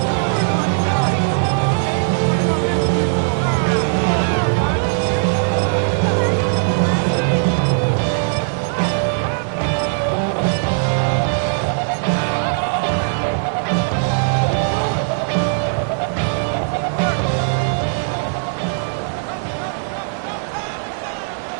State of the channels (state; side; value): silent; left; digital silence